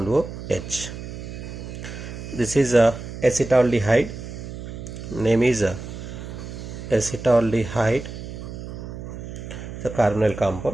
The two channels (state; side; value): noise; right; hum, 10 dB below the sound